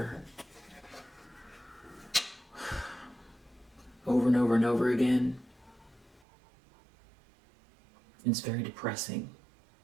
over and over and over again. It's very depressing.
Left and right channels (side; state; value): left; drops out; at 6.2 s